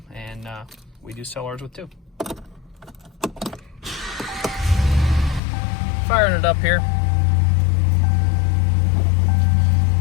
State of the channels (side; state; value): right; drops out; at 5.4 s